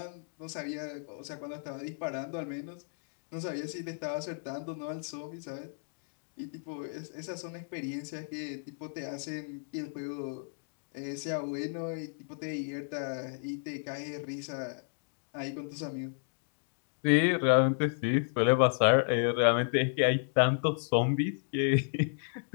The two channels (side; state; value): right; silent; digital silence